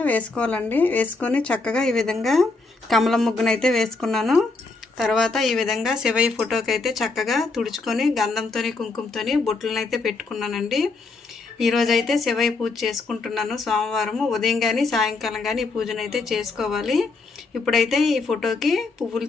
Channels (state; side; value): quieter; right; 3.8 dB